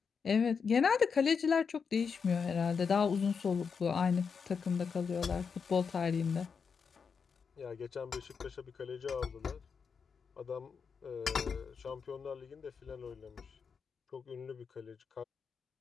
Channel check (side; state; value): right; quieter; 5.9 dB